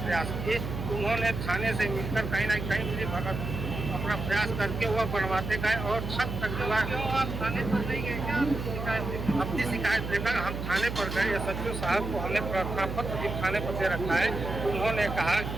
किए तो उन्होंने थाने से मिलकर कहीं ना कहीं मिली भगत अपना प्रयास करके वह बनवाते गए और छत तक दीवार। आप थाने पर नहीं गए क्या? अपनी शिकायत लेकर हम थाने पर गए। SHO साहब को हमने प्रार्थना पत्र भी थाने पर दे रखा है तो उन्होंने कहा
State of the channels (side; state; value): right; noise; hum, 5 dB below the sound